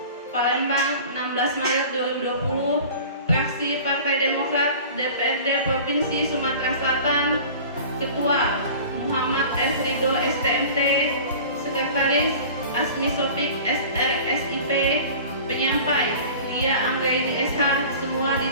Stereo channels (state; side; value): inverted; both; correlation -0.40